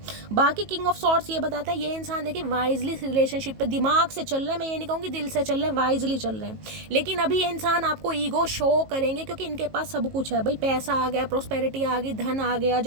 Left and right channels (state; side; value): late; left; 19 ms